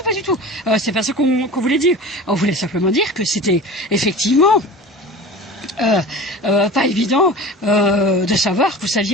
pas du tout. C'est pas ça qu'on voulait dire. On voulait simplement dire que c'était effectivement pas évident de savoir que vous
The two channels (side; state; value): both; normal; correlation 0.36